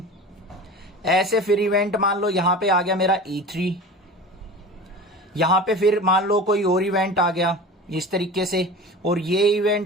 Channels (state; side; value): normal; both; correlation 0.35